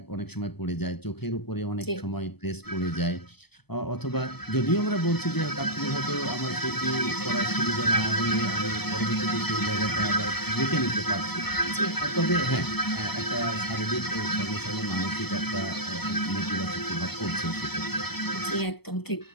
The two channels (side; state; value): right; late; 0.97 ms